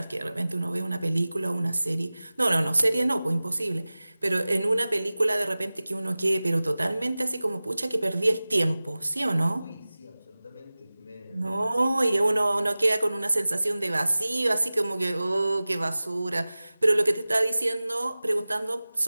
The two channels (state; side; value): inverted; both; correlation -0.98